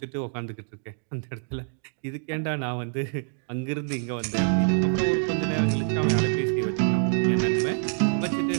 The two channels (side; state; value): left; silent; digital silence